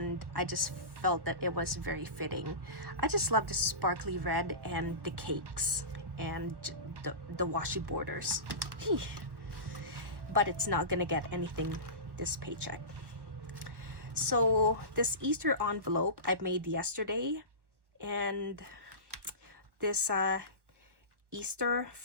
I just felt that it was very fitting. I just love the sparkly red and the cakes and the washi borders. But it's not gonna get anything this paycheck. So this Easter envelope I made yesterday, and this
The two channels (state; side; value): late; left; 1.1 ms